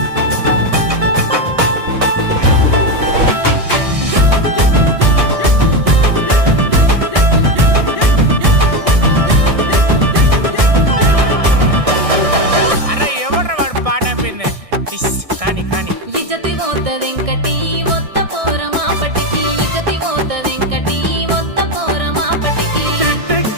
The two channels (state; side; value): late; left; 1.6 ms